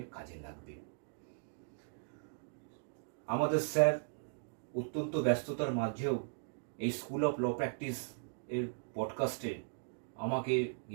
কাজে লাগবে। আমাদের স্যার অত্যন্ত ব্যস্ততার মাঝেও এই স্কুল অফ ল প্র্যাকটিস এর পডকাস্টে আমাকে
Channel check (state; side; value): silent; left; digital silence